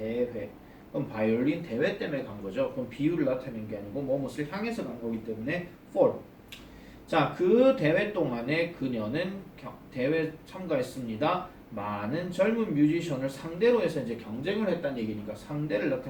그럼 바이올린 대회 때문에 간 거죠. 그럼 비유를 나타내는 게 아니고 뭐뭇을 향해서 간 거기 때문에 for. 자, 그 대회 동안에 그녀는 대회 참가했습니다. 많은 젊은 뮤지션을 상대로 해서 이제 경쟁을 했다는 얘기니까 상대를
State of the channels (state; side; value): identical; both; correlation 1.00